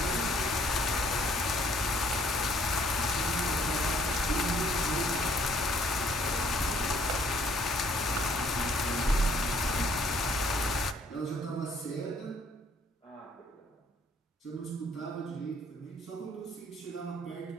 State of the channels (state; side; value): normal; both; correlation 0.64